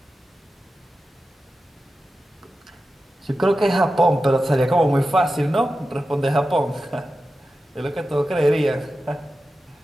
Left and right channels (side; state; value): both; normal; correlation 0.92